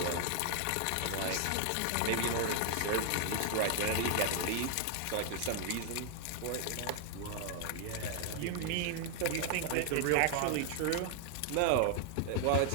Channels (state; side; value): different; both; correlation 0.00